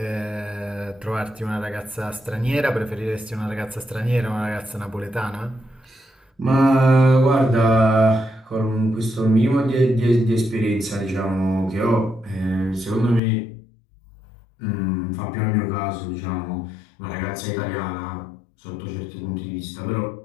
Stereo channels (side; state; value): right; drops out; at 13.2 s